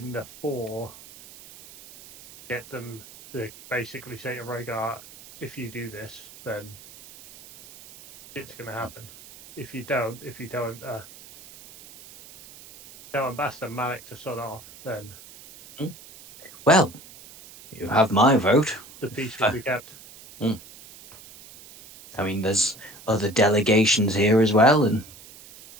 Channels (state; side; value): noise; right; hiss, 19 dB below the sound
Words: the four, get them to basically say to Rhaegar, if you do this, then it's going to happen. If you don't tell Ambassador Malik to sod off, then Well, you have my vote. the peace will be kept. I mean, there's other delegations here as well,